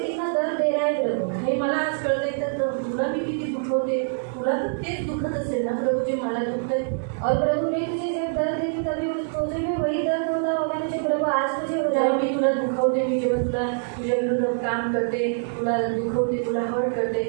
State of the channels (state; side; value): silent; left; 62 dB below the other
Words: दर्द दे रहा है प्रभु। हे मला आज कळतंय तर तुला मी किती दुखवते, तुला तर तेच दुखत असेल ना प्रभू जे मला दुखतंय. और प्रभु मैं तुझे जब दर्द देती तभी तुझे भी वही दर्द होता होगा मुझे प्रभु आज मुझे हो जेव्हा जाए। मी तुला दुखवते, मी जेव्हा तुला तुझ्या विरुद्ध काम करते, तुला दुखवते, तुला हर्ट करते,